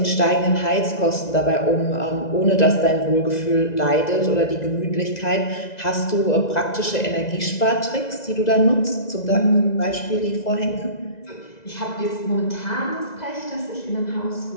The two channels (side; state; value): right; late; 2.0 ms